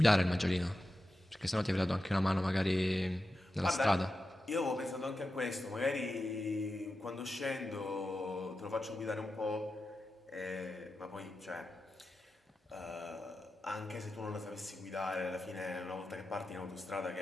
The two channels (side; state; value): both; normal; correlation 0.91